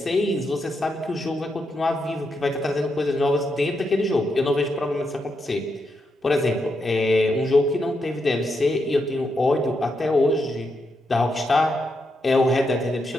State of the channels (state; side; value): normal; both; correlation 0.83